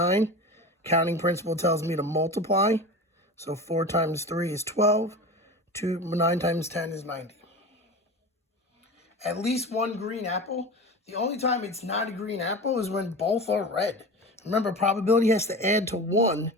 Counting principle tells me to multiply. So 4 times 3 is 12. 9 times 10 is 90. At least 1 green apple. The only time it's not a green apple is when both are red. Remember, probability has to add to 1.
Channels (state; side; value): normal; both; correlation 0.30